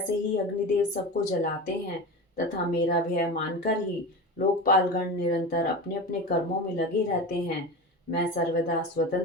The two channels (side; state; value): both; normal; correlation 0.27